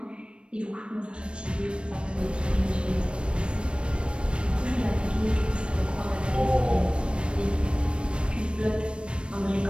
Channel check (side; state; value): left; late; 0.058 ms